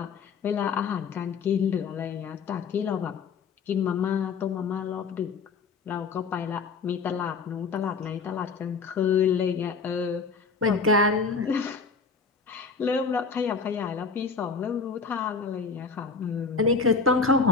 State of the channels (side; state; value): right; quieter; 4.9 dB